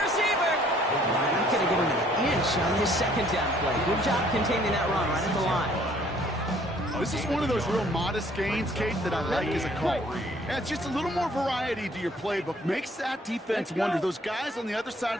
receiver. Not going to give him an inch on this 2nd down play. Good job containing that run right at the line. This is one of those real modest gains, Kate, that I like as a call. Adds just a little more variety to your playbook. Makes that defense wonder. Those guys on the other side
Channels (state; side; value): normal; both; correlation 0.60